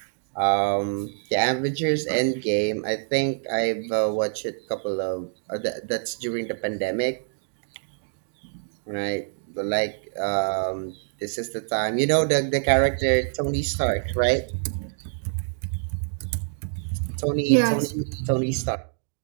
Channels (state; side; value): silent; left; digital silence